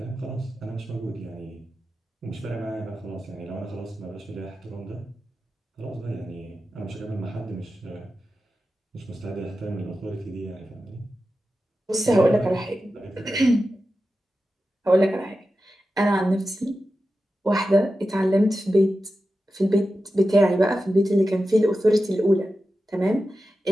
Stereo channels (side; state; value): both; normal; correlation 0.92